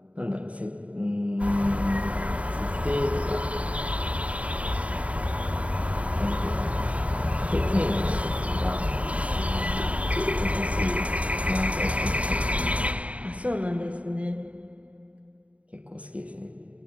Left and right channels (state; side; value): late; left; 0.066 ms